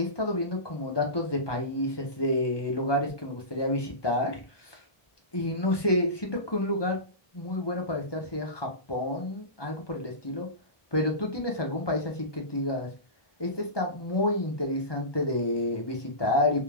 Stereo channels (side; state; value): right; late; 1.2 ms